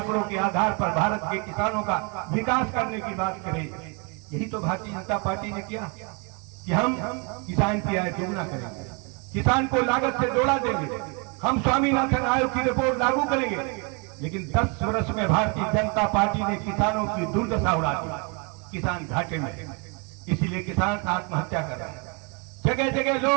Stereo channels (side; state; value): left; quieter; 32.1 dB